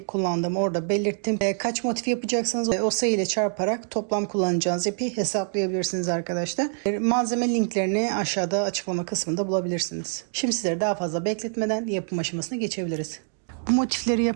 kullandığımı orada belirttim. Kaç motif yapacaksanız o sayı ile çarparak toplam kullanacağınız ipi hesaplayabilirsiniz arkadaşlar. Malzeme linklerini aşağıda açıklama kısmında bulabilirsiniz. Şimdi sizleri daha fazla bekletmeden yapım aşamasına geçebiliriz. Bu motifleri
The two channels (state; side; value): silent; left; digital silence